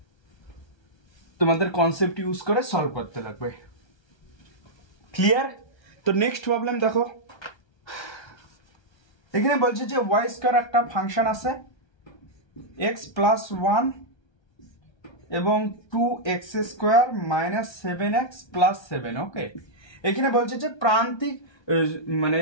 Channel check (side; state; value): right; late; 1.3 ms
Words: তোমাদের কনসেপ্ট ইউজ করে সলভ করতে লাগবে। ক্লিয়ার? তো নেক্সট প্রবলেম দেখো, এখানে বলছে যে y স্কয়ার একটা ফাংশন আছে x প্লাস 1 এবং 2x² মাইনাস 7x প্লাস 7। ওকে, এখানে বলছে যে